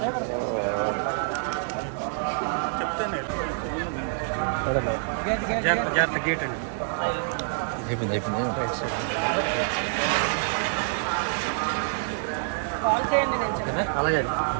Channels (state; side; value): silent; left; 58 dB below the other